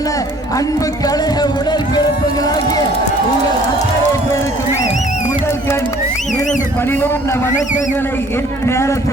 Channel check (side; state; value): both; normal; correlation 0.55